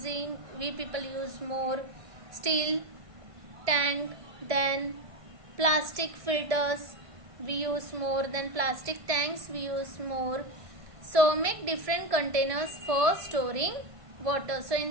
We people use more steel tank. Then plastic filters we use more. Then plastic tanks we use more. So make different containers for storing water. So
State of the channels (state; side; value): late; left; 1.7 ms